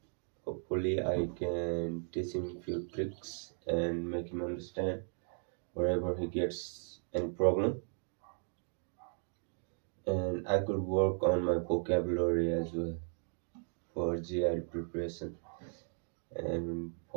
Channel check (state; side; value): silent; left; 54 dB below the other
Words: Hopefully I can teach him few tricks and make him understand wherever he gets any problem. And I could work on my vocabulary as well for GI preparation. And